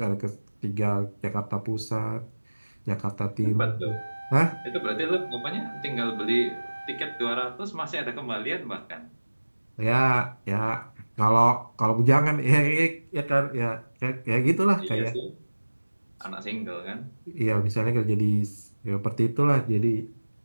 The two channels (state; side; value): inverted; both; correlation -1.00